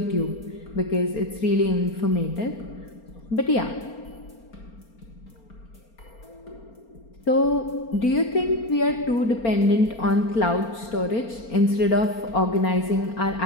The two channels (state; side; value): late; right; 4.4 ms